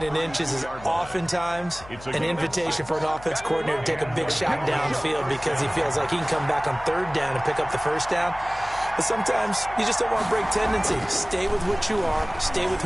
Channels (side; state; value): left; noise; hum, 18 dB below the sound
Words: and inches is oftentimes an invitation for an offense coordinator to take a big shot downfield because he feels like he can come back on 3rd down and pick up the first down. But sometimes you just don't want to break tendency. Stay with what you are. Stay with